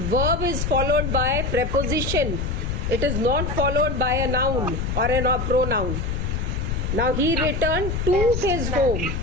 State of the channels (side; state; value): left; noise; rumble, 2 dB below the sound